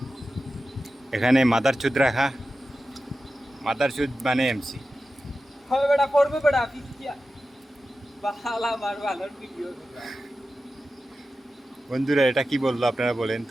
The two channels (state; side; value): normal; both; correlation 0.93